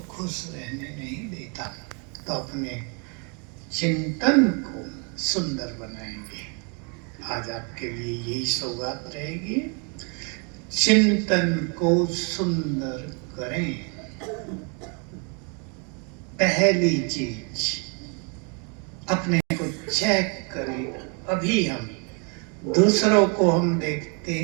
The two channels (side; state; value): left; quieter; 36.6 dB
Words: खुश रहने नहीं देता। तो अपने चिंतन को सुंदर बनाएंगे। आज आपके लिए यही सौगात रहेगी, चिंतन को सुंदर करें। पहली चीज, अपने को चेक करें। अभी हम दूसरों को हम देखते